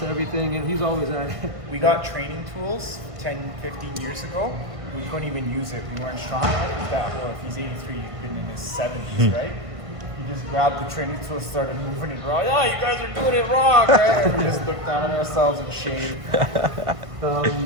everything, and he's always at it. We got training tools 10, 15 years ago. We couldn't even use it. We weren't strong enough. Well, if he's 83, he's been in his 70s, right? He just grabbed the training tools, started moving it wrong. Yeah, you guys are doing it wrong, right? And we just looked down at ourselves in shame.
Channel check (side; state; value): left; late; 1.5 ms